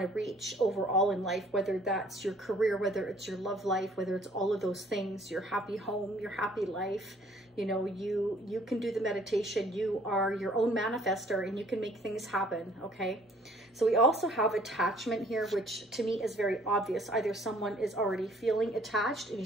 to reach overall in life, whether that's your career, whether it's your love life, whether it's all of those things, your happy home, your happy life. You know, you can do the meditation. You are your own manifestor and you can make things happen, okay? So we also have attachment here, which to me is very obvious. Either someone is already feeling attached, and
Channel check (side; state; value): both; normal; correlation 0.58